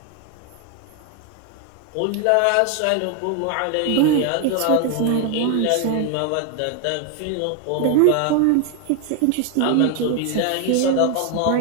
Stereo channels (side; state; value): both; different; correlation 0.01